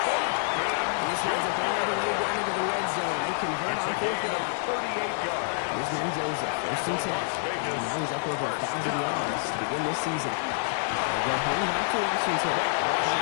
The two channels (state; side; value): silent; right; digital silence